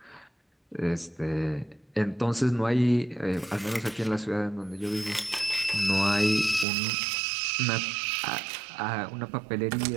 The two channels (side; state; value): left; drops out; at 6.7 s